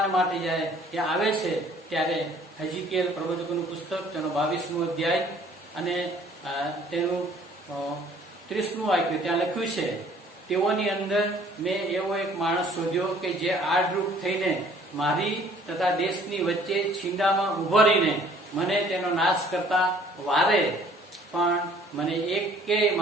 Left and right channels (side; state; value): both; normal; correlation 0.56